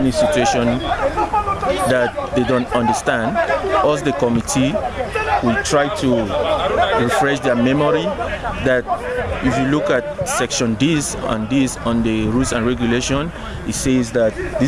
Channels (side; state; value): both; identical; correlation 1.00